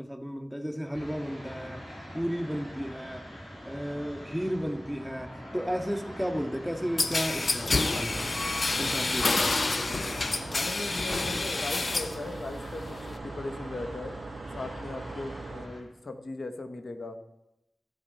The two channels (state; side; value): normal; both; correlation 0.96